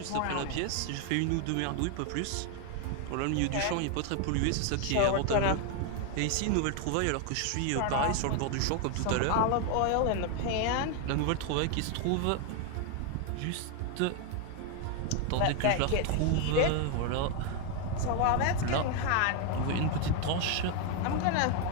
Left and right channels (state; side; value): different; both; correlation 0.01